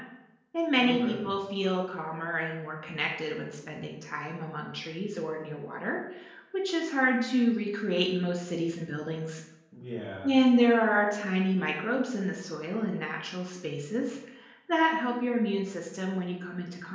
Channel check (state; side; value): identical; both; correlation 1.00